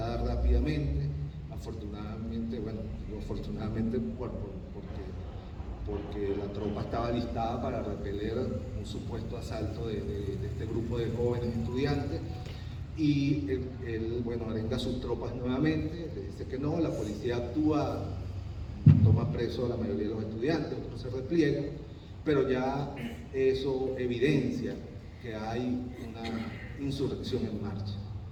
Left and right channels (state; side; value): identical; both; correlation 1.00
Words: rápidamente, afortunadamente, bueno, digo afortunadamente porque porque la tropa estaba listada para repeler un supuesto asalto de este grupo de jóvenes estudiantes. Y él, bueno, arenga a sus tropas nuevamente, le dice que no, la policía actúa, toma preso a la mayoría de los estudiantes, otros se repliegan, pero ya eso evidencia que hay una insurrección en marcha.